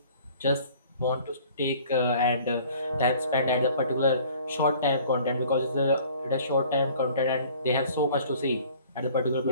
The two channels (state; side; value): inverted; both; correlation -0.52